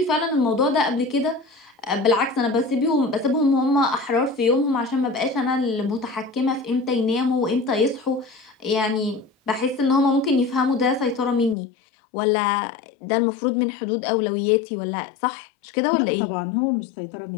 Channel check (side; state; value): right; drops out; at 11.6 s